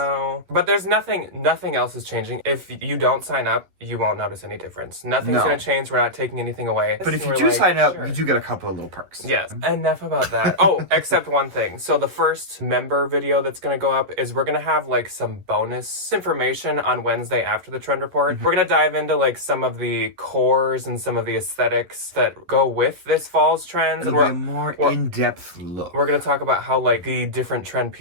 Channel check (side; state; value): left; late; 11 ms